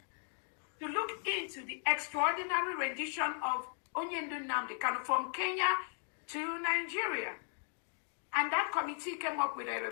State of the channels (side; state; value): right; silent; 53 dB below the other